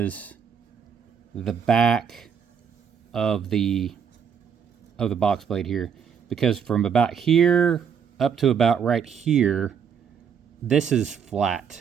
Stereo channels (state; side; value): quieter; left; 7.2 dB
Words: the back of the box blade here, because from about here up to about right here, this is